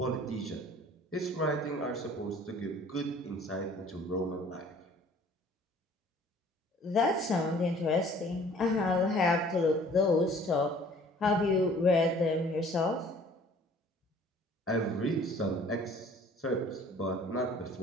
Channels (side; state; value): both; normal; correlation 0.53